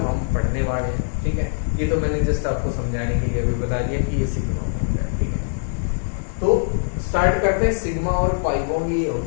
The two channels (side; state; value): right; silent; digital silence